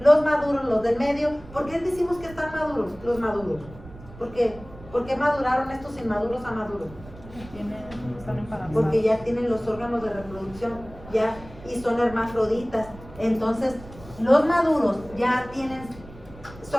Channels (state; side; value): noise; right; rumble, 18 dB below the sound